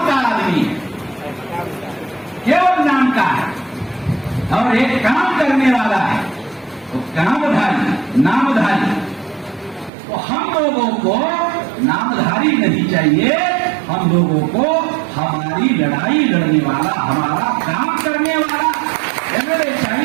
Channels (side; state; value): left; drops out; at 9.9 s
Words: का आदमी केवल नाम का है और एक काम करने वाला है, तो कामधारी नामधारी। तो हम लोगों को नामधारी नहीं चाहिए, हम लोगों को हमारी लड़ाई लड़ने वाला, हमारा काम करने वाला एमएलए